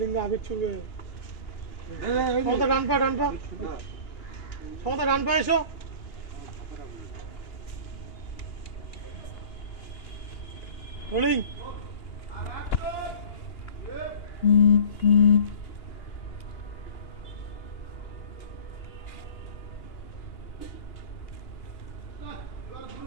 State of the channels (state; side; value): late; right; 2.9 ms